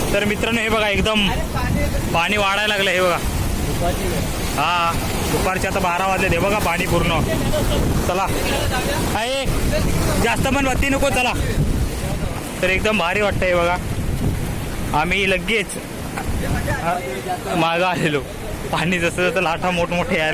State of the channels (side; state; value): both; identical; correlation 1.00